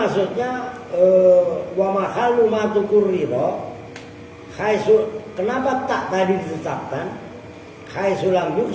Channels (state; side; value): identical; both; correlation 1.00